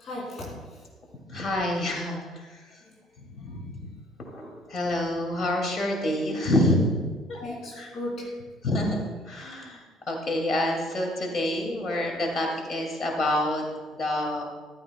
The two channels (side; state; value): both; normal; correlation 0.61